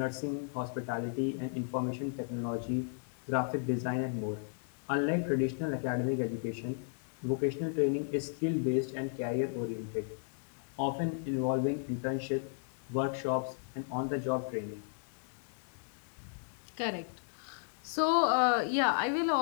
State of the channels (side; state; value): right; silent; digital silence